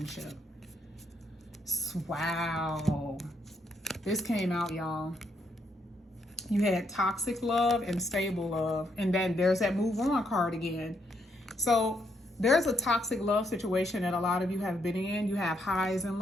Wow, this came out, y'all. You had toxic love and stable love, and then there's that move on card again. So there's a toxic love situation that a lot of you have been in. You have highs and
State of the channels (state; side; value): normal; both; correlation 0.76